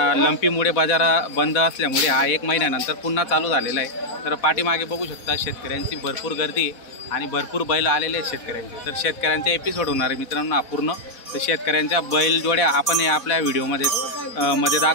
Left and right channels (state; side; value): late; right; 4.1 ms